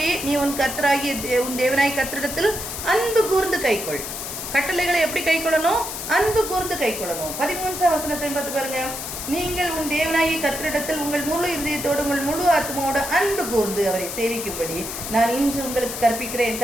நீ உன் தேவனாய் கர்த்தரிடத்தில் அன்பு கூர்ந்து கைக்கொள். கட்டளைகளை எப்படி கை கொள்ளணும்? அன்பு கூர்ந்து கை கொள்ளணும். 13ஆம் வசனத்தை பார்த்து பாருங்க, நீங்கள் உன் தேவனாகி கர்த்தரிடத்தில் உங்கள் முழு இதயத்தோடு உங்கள் முழு ஆத்மாவோடு அன்பு கூர்ந்து அவரை சேவிக்கும்படி நான் இன்று உங்களுக்கு கற்பிக்கிற என்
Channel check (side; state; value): left; noise; hiss, 7 dB below the sound